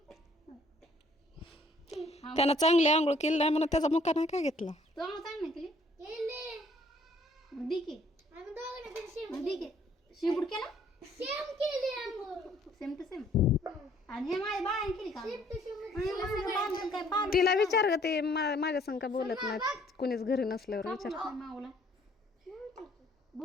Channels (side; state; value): both; normal; correlation 0.61